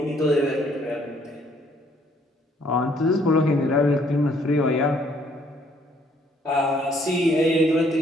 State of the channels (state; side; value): normal; both; correlation 0.65